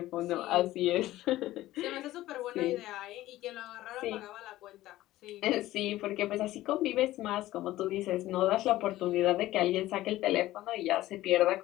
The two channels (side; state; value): right; quieter; 15.8 dB